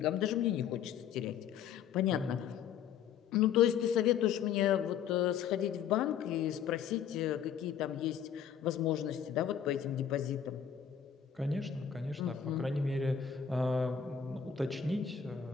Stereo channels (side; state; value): right; quieter; 8.2 dB